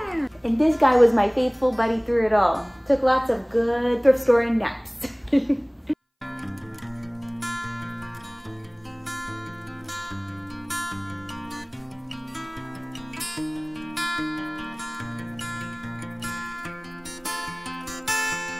And this guy was my faithful buddy through it all. Took lots of good thrift store and naps.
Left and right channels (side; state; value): both; identical; correlation 1.00